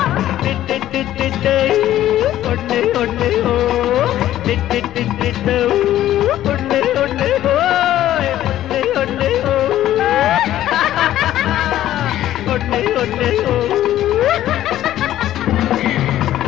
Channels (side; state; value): right; quieter; 13.0 dB